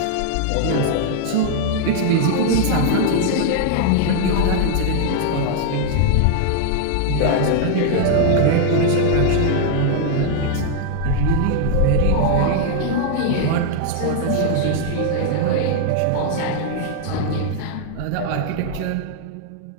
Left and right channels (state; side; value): different; both; correlation 0.00